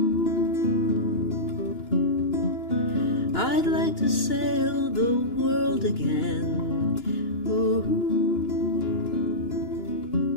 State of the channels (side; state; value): right; late; 2.9 ms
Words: I'd like to sail the world again. Ooh.